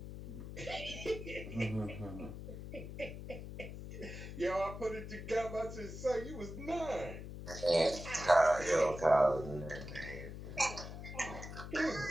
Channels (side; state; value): left; noise; hum, 9 dB below the sound